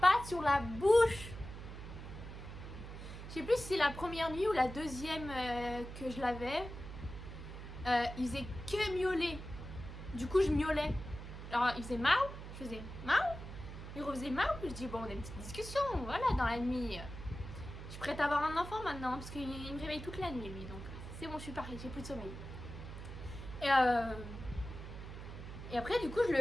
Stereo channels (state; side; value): noise; right; hum, 10 dB below the sound